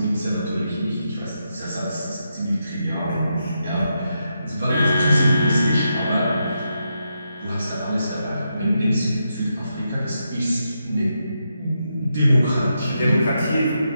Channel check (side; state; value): both; inverted; correlation -0.83